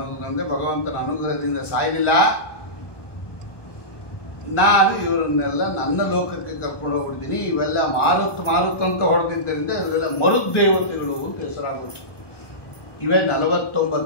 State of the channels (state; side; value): late; right; 1.2 ms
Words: ಭಗವಂತನ ಅನುಗ್ರಹದಿಂದ ಸಾಯಲಿಲ್ಲ. ನಾನು ಇವರನ್ನೆಲ್ಲ ನನ್ನ ಲೋಕಕ್ಕೆ ಕರ್ಕೊಂಡು ಹೋಗ್ಬಿಡ್ತೀನಿ. ಇವೆಲ್ಲ ಮಾರುತ್ ಮಾರುತ್ ಅಂತ ಹೊಡೆದಿದ್ದರಿಂದ ಇವರೆಲ್ಲ ಮರುದ್ದೇವತೆಗಳು ಅಂತ ಹೆಸರಾಗುತ್ತೆ. ಇವೇ